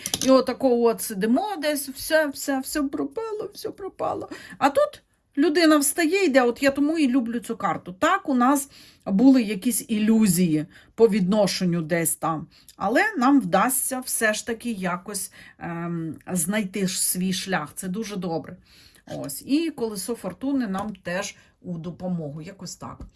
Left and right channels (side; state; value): both; identical; correlation 1.00